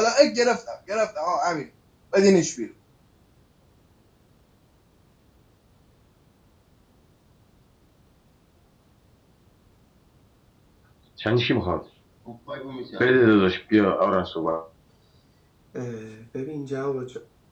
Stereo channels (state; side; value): identical; both; correlation 1.00